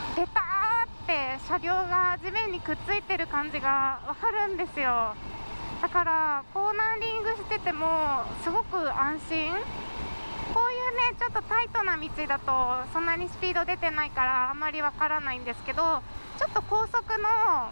ベターって車両が地面にくっついてる感じがわかるんですよ。だからコーナーリングしててもすごく安心。こういうねちょっとタイトな道だとそんなにスピード出てないからあんまりわからないんですけど、ちょっと高速の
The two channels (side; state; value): both; inverted; correlation -1.00